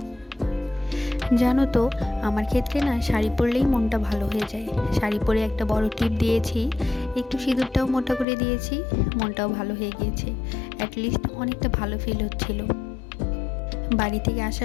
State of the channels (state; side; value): drops out; right; at 8.2 s